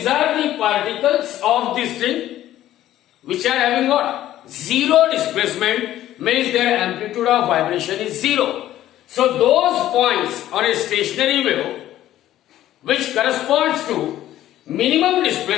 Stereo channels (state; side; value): quieter; right; 13.3 dB